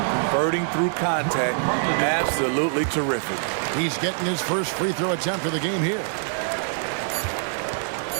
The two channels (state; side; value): silent; left; digital silence